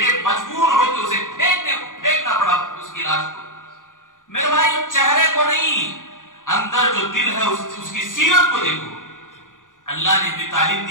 مجبور ہو کے اسے پھینکنا پڑا اس کی لاش کو. میرے بھائی چہرے کو نہیں، اندر جو دل ہے اس کی سیرت کو دیکھو. اللہ نے بھی تعلیم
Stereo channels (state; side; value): late; right; 0.88 ms